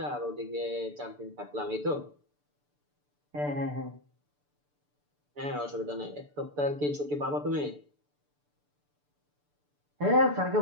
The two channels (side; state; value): left; late; 6.8 ms